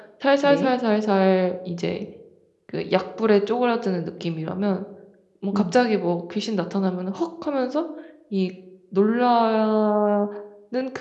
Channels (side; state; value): both; identical; correlation 1.00